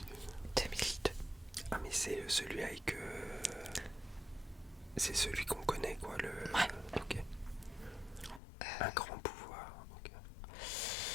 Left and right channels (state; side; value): drops out; right; at 8.4 s